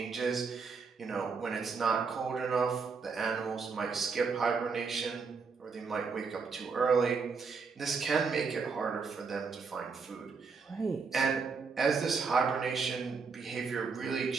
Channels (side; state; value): left; quieter; 5.0 dB